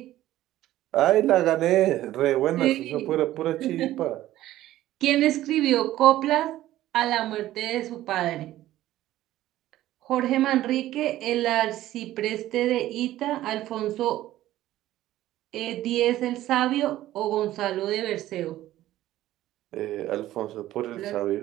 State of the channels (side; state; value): left; quieter; 14.5 dB